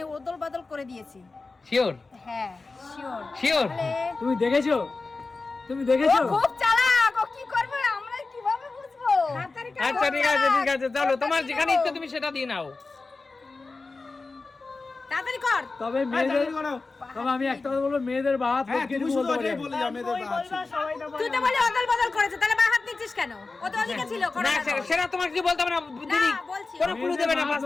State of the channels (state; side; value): quieter; right; 3.8 dB